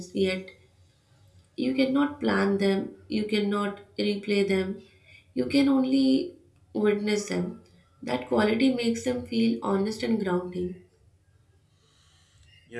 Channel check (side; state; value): both; identical; correlation 1.00